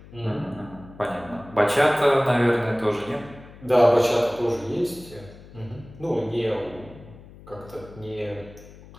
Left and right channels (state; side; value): noise; left; hum, 20 dB below the sound